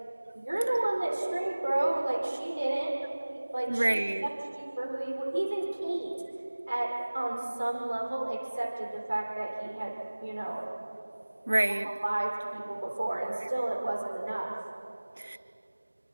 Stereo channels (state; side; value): inverted; both; correlation -1.00